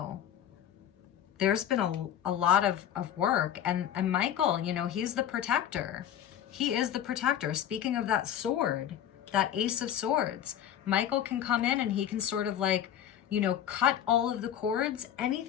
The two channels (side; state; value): right; quieter; 10.4 dB